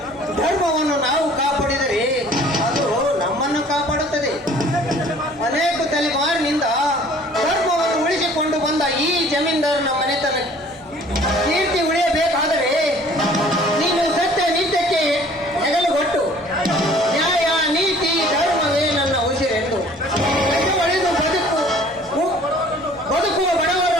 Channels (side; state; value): both; normal; correlation 0.52